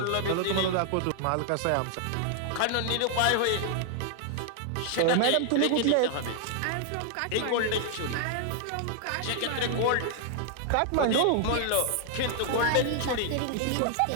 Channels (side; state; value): both; different; correlation 0.00